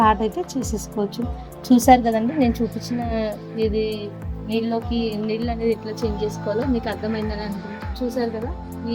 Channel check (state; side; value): identical; both; correlation 1.00